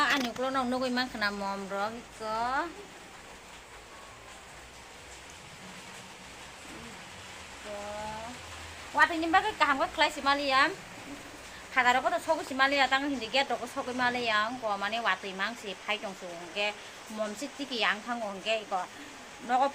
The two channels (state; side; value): identical; both; correlation 1.00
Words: anyuk lo nong nugui mang kena mom rok iko. Wati nyimba ke kaham ke klai si Maliam. Kata rok to sogu si Malia tang hindi get rok sogu Maliam ko mane wati mang si pai jong su ke mom si tiki yang thang ong ke iko. Noko